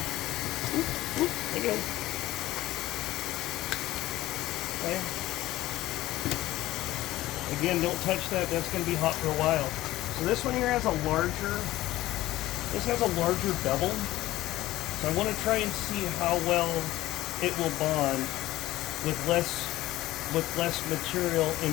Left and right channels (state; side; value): quieter; right; 16.3 dB